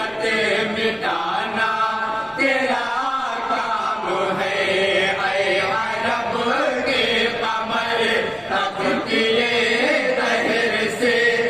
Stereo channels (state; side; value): identical; both; correlation 1.00